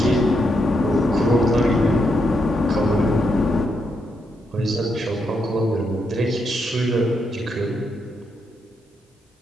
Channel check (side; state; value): both; normal; correlation 0.80